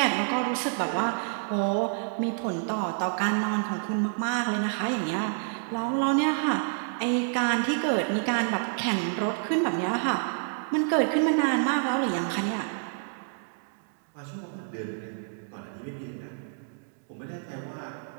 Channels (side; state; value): left; silent; digital silence